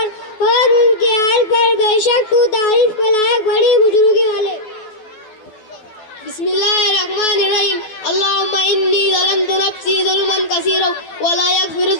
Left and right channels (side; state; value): right; late; 12 ms